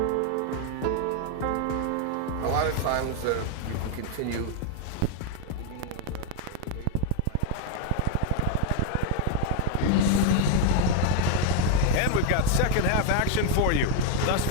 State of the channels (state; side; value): different; both; correlation 0.01